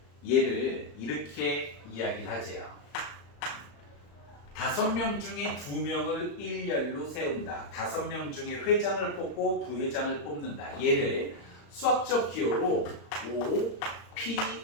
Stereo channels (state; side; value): late; right; 35 ms